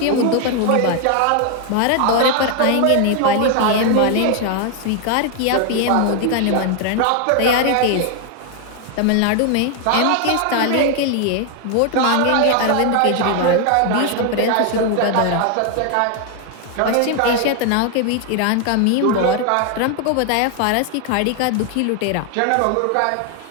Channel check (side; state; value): both; different; correlation 0.00